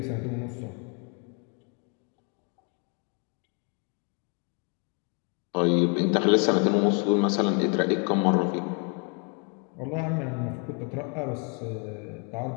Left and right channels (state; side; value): quieter; right; 36.1 dB